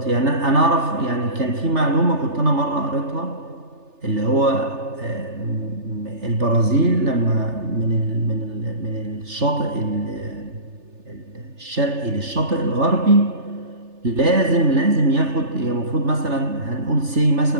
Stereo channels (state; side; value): late; left; 3.3 ms